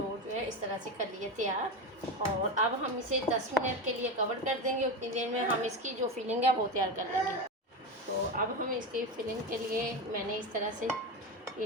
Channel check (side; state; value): both; normal; correlation 0.18